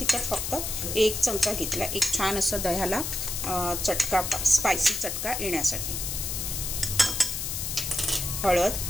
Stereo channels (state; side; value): noise; left; hiss, 3 dB below the sound